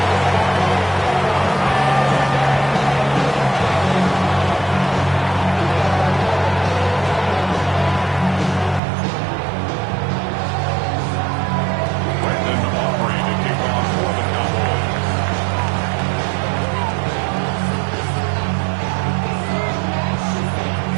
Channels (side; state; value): left; drops out; at 8.8 s